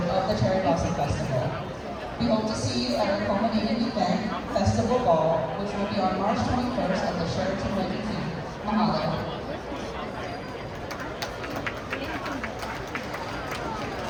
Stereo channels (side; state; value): both; identical; correlation 1.00